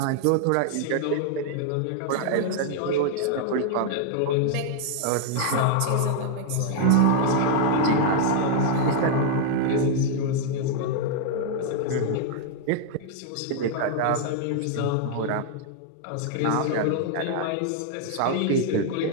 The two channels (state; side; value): different; both; correlation 0.00